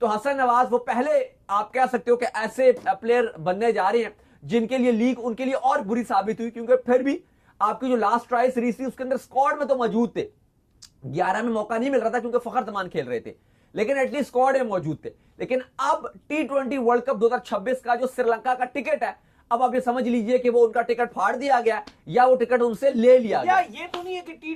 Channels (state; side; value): identical; both; correlation 1.00